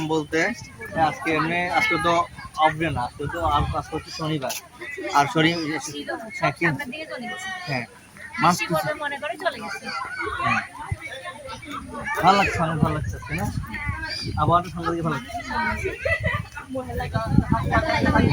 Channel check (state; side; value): identical; both; correlation 1.00